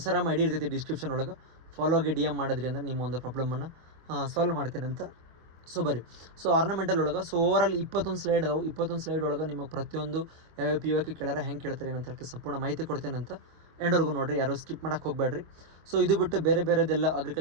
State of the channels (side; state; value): left; late; 24 ms